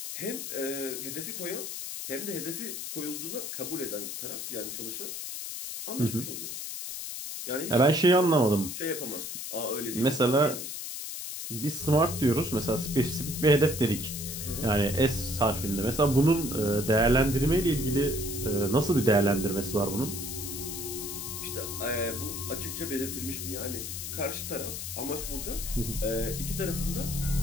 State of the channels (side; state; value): left; noise; hiss, 6 dB below the sound